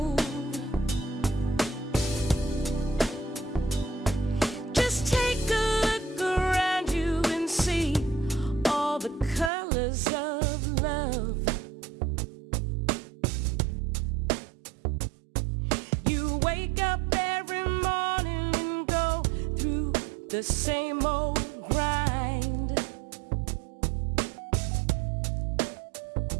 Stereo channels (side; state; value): left; drops out; at 9.5 s